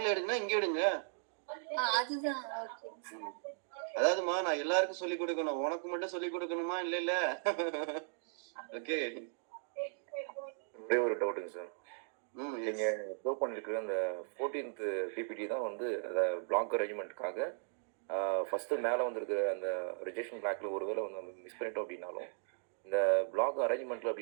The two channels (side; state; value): left; silent; digital silence